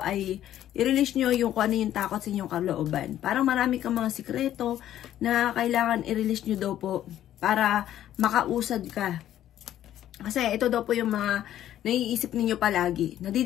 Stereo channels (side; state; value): right; quieter; 12.0 dB